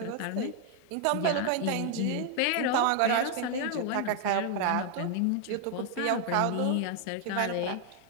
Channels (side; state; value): both; different; correlation 0.00